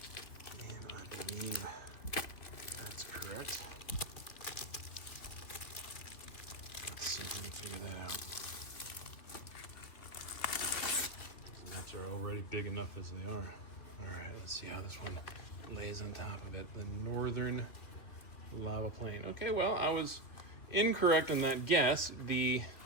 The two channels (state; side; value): late; right; 3.1 ms